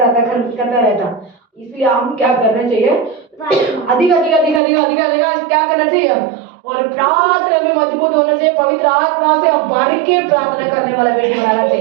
इसलिए हम क्या करना चाहिए, अधिक अधिक अधिक अधिक अधिक अधिक क्या करना चाहिए, और प्रार्थना में मजबूत होना चाहिए, पवित्र आत्मा से हम बारीक के प्रार्थना करने वाला बेटी बनाना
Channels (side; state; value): left; drops out; at 4.6 s